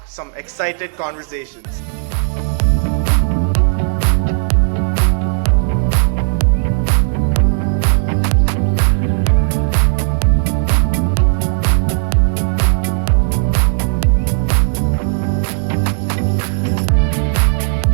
some excited conversations.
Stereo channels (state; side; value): silent; left; digital silence